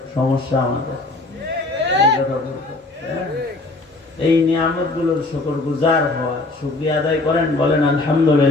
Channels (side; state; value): right; quieter; 3.1 dB